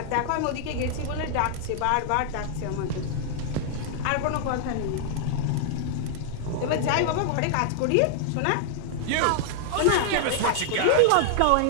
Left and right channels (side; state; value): both; different; correlation -0.01